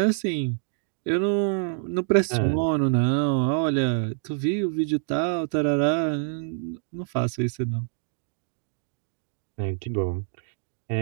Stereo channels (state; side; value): silent; left; digital silence